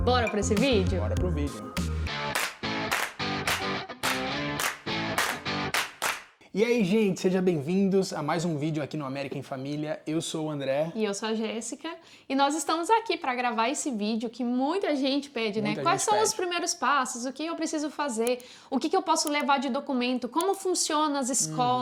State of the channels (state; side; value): identical; both; correlation 1.00